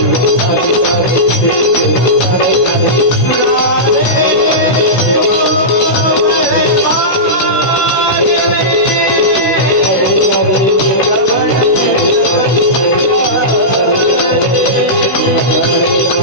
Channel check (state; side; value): late; right; 16 ms